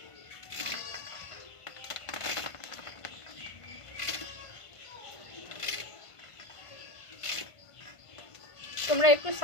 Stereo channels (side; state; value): right; late; 1.5 ms